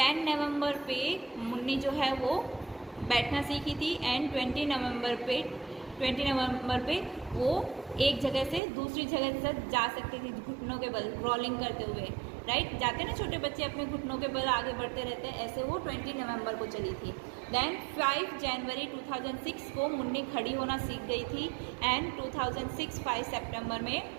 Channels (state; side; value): drops out; left; at 8.6 s